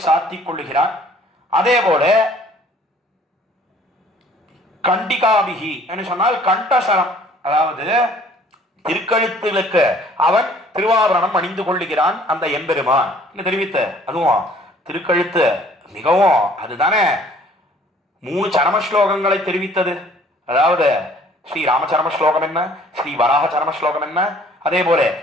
சாத்திக் கொள்ளுகிறார். அதே போல கண்டிகாபிகி என்று சொன்னால் கண்டசரம், அதாவது திருக்கழுத்துகளுக்கு அவன் திருவாபரணம் அணிந்து கொள்ளுகிறான் அந்த எம்பெருமான் தெரிவித்த. அதுவும் திருக்கழுத்து மிகவும் அதுதானே 3 சரம ஸ்லோகங்களை தெரிவித்தது. அதாவது ஸ்ரீ ராமச்சரம ஸ்லோகம் என்ன, ஸ்ரீ வராக சரம ஸ்லோகம் என்ன, அதே போல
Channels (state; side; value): normal; both; correlation 0.56